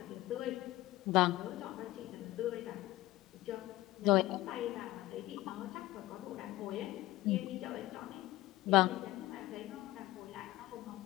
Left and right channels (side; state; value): right; quieter; 17.1 dB